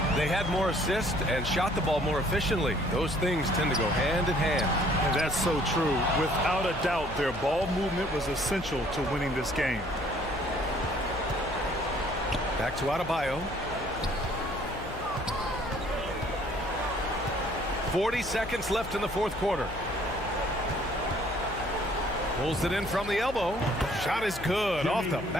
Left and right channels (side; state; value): left; noise; hum, 13 dB below the sound